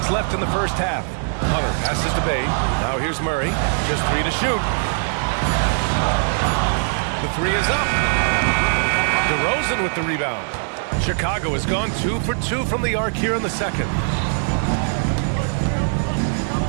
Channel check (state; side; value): silent; left; digital silence